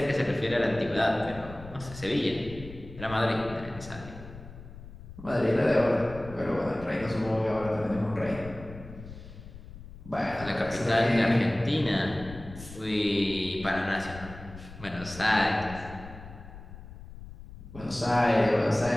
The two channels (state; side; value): noise; left; rumble, 15 dB below the sound